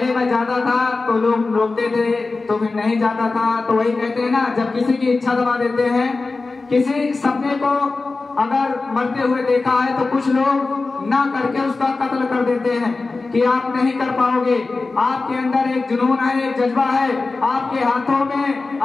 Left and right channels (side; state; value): right; quieter; 3.7 dB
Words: मैं जाता था तो लोग रोकते थे, तो फिर नहीं जाता था। तो वही कहते हैं ना, जब किसी की इच्छा दबा देते हैं, किसी सपने को अगर मरते हुए देखा है तो कुछ लोग ना करके उसका कत्ल कर देते हैं कि आप नहीं कर पाओगे। आपके अंदर एक जुनून है, एक जज्बा है, आपके हाथों में,